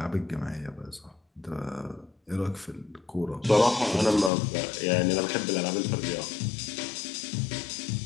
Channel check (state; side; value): drops out; right; at 4.3 s